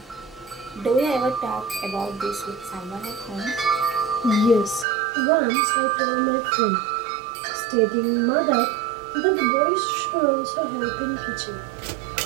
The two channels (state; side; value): drops out; left; at 4.9 s